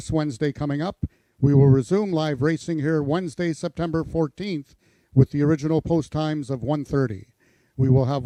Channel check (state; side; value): identical; both; correlation 1.00